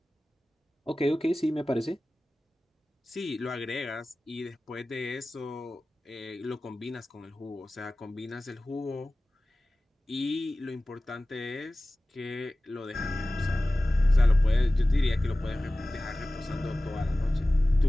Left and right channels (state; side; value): normal; both; correlation 0.97